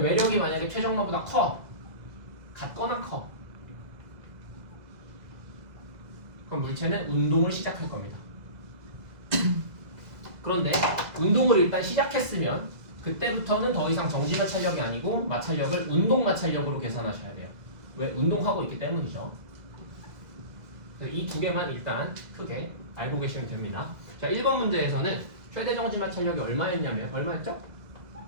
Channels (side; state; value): left; late; 2.1 ms